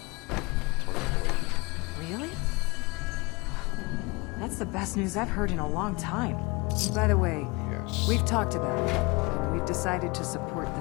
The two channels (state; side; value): quieter; right; 26.4 dB